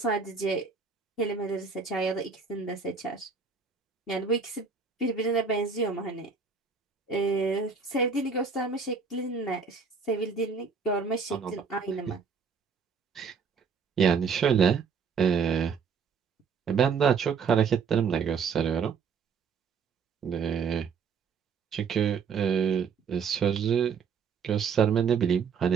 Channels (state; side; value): quieter; left; 5.9 dB